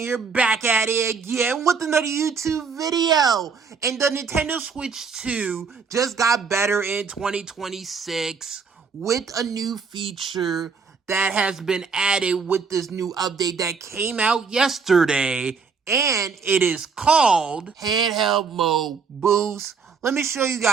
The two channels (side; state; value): left; quieter; 5.4 dB